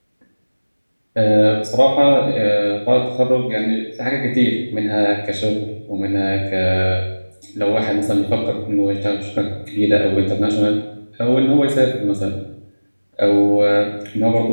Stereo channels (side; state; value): both; inverted; correlation -1.00